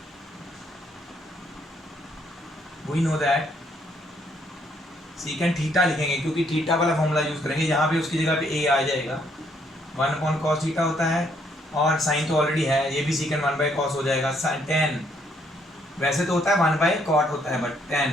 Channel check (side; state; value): both; normal; correlation 0.70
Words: we know that secant theta लिखेंगे, क्योंकि थीटा वाला फॉर्मूला यूज करेंगे, यहाँ पे उसकी जगह पे ए आ जाएगा। 1/cos थीटा होता है, और साइन तो ऑलरेडी है, ये भी सीकेंट 1/cos हो जाएगा। टेन वैसे तो होता है 1/cot होता है, बट टेन